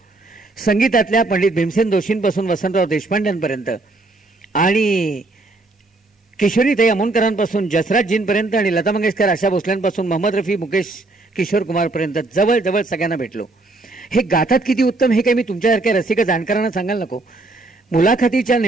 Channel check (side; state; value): left; quieter; 3.1 dB